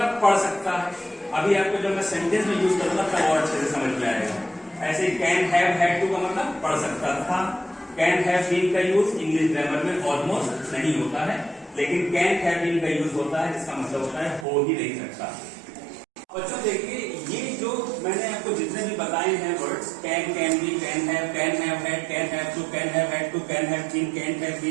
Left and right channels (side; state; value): left; drops out; at 14.5 s